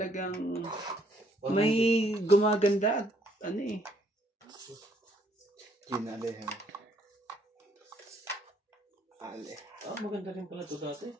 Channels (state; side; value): normal; both; correlation 0.67